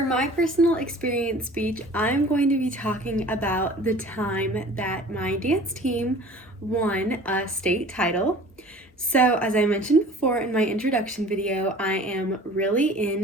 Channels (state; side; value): normal; both; correlation 0.45